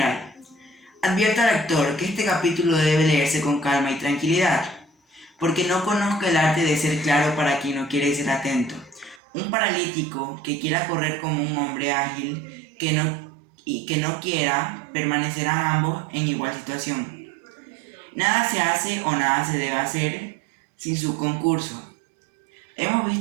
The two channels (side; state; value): left; drops out; at 9.2 s